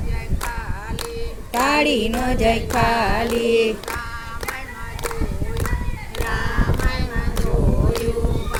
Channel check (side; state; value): both; identical; correlation 1.00